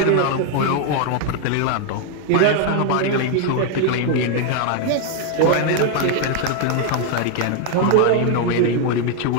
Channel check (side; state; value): both; different; correlation 0.00